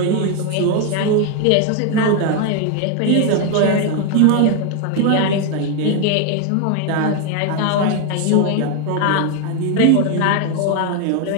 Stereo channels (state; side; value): different; both; correlation 0.01